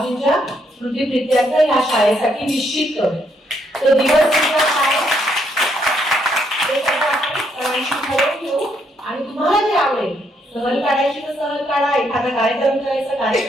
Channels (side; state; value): both; normal; correlation 0.74